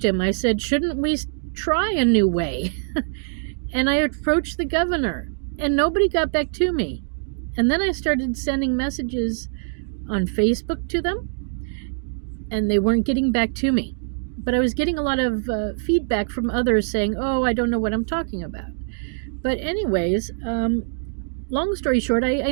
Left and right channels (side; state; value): left; silent; digital silence